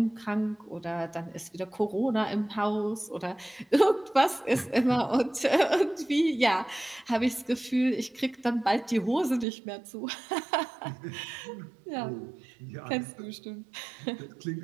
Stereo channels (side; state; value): left; drops out; at 9.5 s